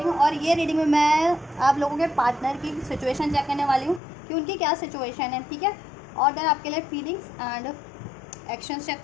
और ये रीडिंग में मैं आप लोगों के पार्टनर की सिचुएशन चेक करने वाली हूँ कि उनकी क्या सिचुएशन है, ठीक है। और देन आपके लिए फीलिंग्स एंड एक्शंस चेक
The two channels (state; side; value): drops out; right; at 4.0 s